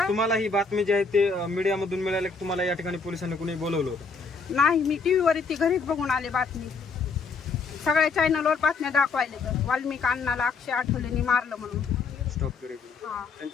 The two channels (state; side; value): quieter; right; 4.7 dB